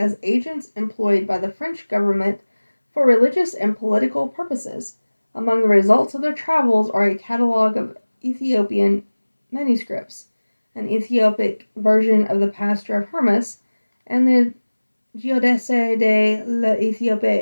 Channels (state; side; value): inverted; both; correlation -1.00